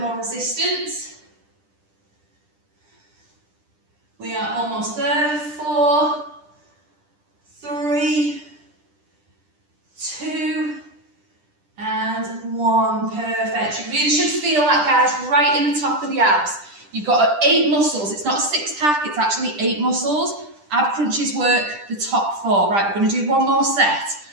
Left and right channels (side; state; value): left; late; 10 ms